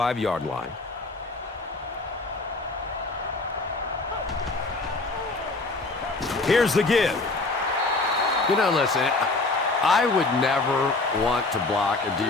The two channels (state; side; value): quieter; right; 3.3 dB